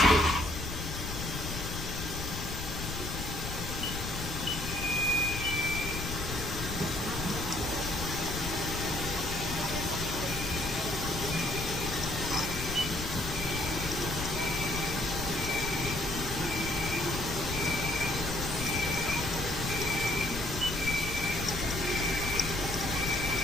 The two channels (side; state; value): left; noise; rumble, 6 dB below the sound